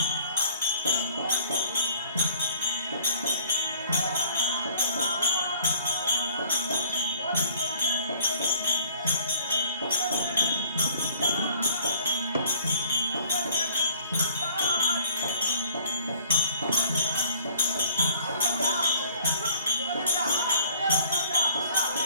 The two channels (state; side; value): inverted; both; correlation -0.54